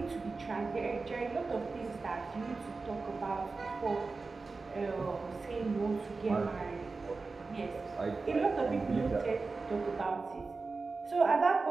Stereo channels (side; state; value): left; quieter; 4.0 dB